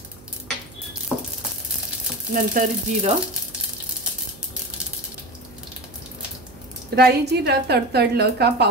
नंतर जिरं। राई जिरं तडतडलं का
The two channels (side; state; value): right; noise; hum, 22 dB below the sound